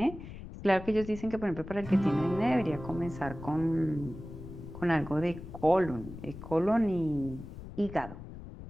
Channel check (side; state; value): left; noise; rumble, 12 dB below the sound